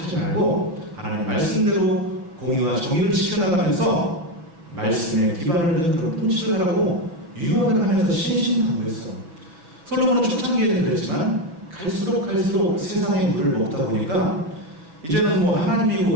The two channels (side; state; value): left; late; 5.9 ms